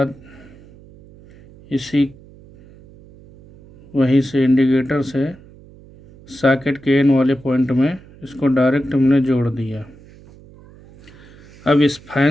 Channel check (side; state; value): right; noise; hum, 23 dB below the sound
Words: वहीं से इंडिकेटर से सॉकेट के एन वाले पॉइंट में इसको डायरेक्ट हमने जोड़ दिया। अब इस